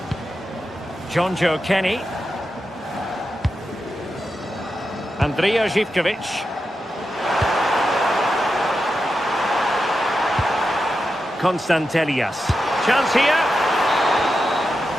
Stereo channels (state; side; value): normal; both; correlation 0.89